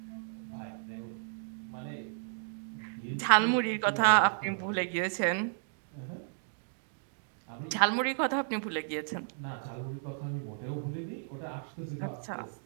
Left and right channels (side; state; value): left; silent; digital silence